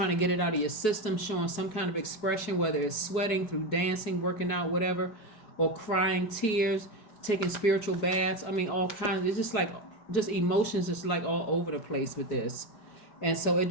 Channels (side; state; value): right; late; 4.7 ms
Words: to get it out of your system, showing some kind of expression, whether it's sweating through dancing, working out, whatever, or crying tears, taking spiritual baths. I mean, all kinds. It's just emotions is like all over the place with this. And so it